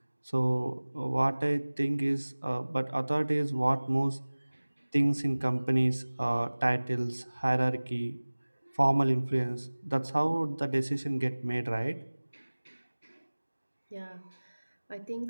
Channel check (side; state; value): both; inverted; correlation -1.00